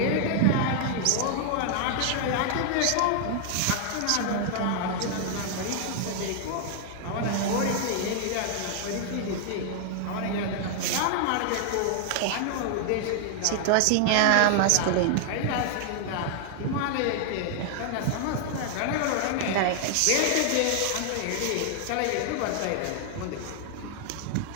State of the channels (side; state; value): both; different; correlation 0.00